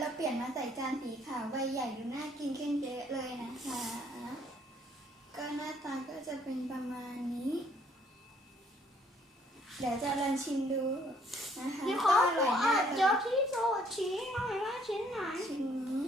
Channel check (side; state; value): both; normal; correlation 0.63